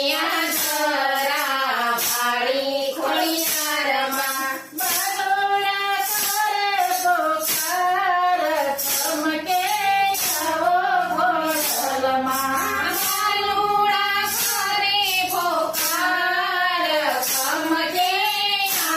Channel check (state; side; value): identical; both; correlation 1.00